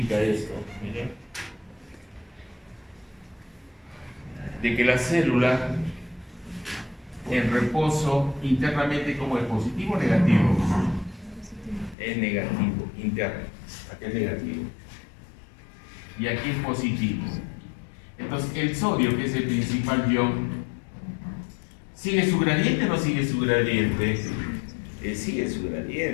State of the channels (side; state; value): right; drops out; at 12.0 s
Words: esto, miren, de que la célula en reposo internamente, como es positivo o negativo, es negativo, interno, aquí es negativo y aquí es positivo. Entonces el sodio, que es el principal ion, ¿sigue su gradiente o no sigue su gradiente? Sigue su